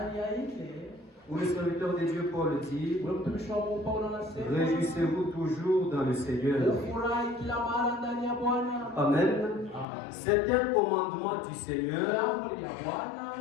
Où le serviteur de Dieu Paul dit: réjouissez-vous toujours dans le Seigneur. Amen. C'est un commandement du Seigneur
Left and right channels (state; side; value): drops out; right; at 9.9 s